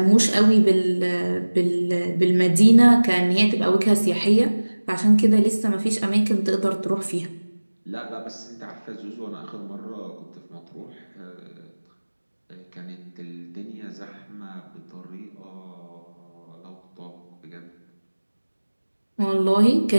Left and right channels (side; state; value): both; inverted; correlation -1.00